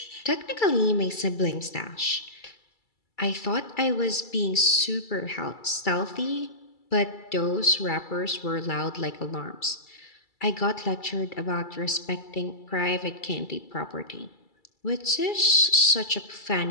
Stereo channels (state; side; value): late; right; 2.3 ms